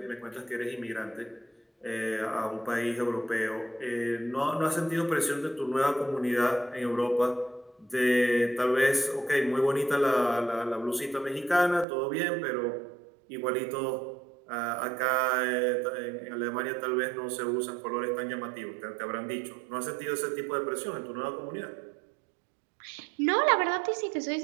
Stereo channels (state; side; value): drops out; left; at 11.9 s